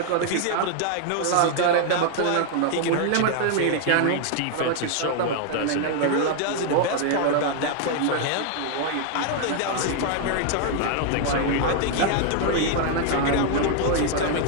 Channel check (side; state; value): both; different; correlation 0.00